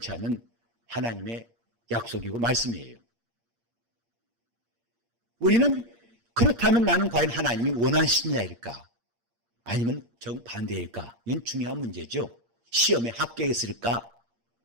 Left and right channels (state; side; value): late; left; 8.6 ms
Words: 않는 하나님의 약속이고 말씀이에요. 우리는 그렇다면 나는 과연 하나님이 원하시는 자일까? 아니면 정반대일까? 이건 중요한 문제죠. 시험에 합격했을까?